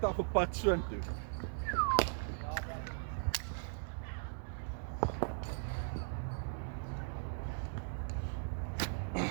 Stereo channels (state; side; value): silent; left; digital silence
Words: af op pad soontoe.